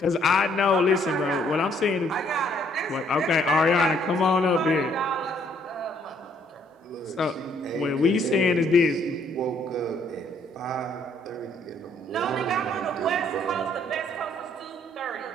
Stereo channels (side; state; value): both; normal; correlation 0.66